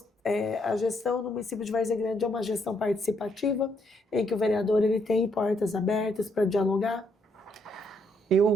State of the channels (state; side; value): normal; both; correlation 0.73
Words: a gestão no município de Várzea Grande, é uma gestão participativa, em que o vereador ele tem portas abertas para dialogar.